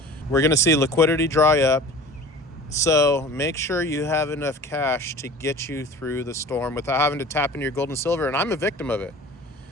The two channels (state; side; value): normal; both; correlation 0.41